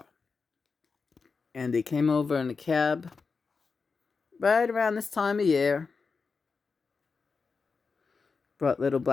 And they came over in a cab right around this time of year. Brought little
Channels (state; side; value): quieter; right; 4.8 dB